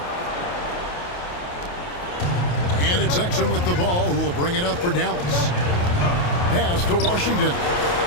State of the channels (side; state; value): right; late; 28 ms